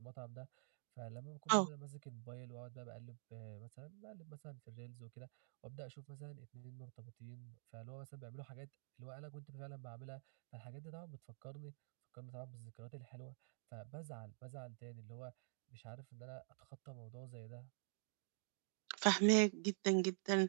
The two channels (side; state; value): left; silent; digital silence